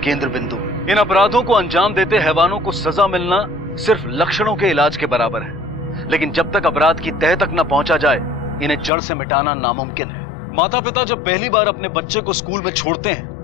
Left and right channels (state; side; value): drops out; right; at 8.9 s